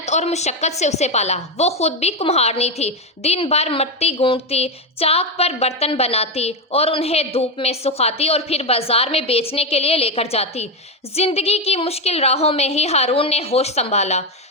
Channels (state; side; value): normal; both; correlation 0.09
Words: اور مشقت سے اسے پالا۔ وہ خود بھی کمہارنی تھی، دن بھر مٹی گونڈتی، چاک پر برتن بناتی اور انہیں دھوپ میں سکھاتی اور پھر بازار میں بیچنے کے لیے لے کر جاتی۔ زندگی کی مشکل راہوں میں ہی ہارون نے ہوش سنبھالا۔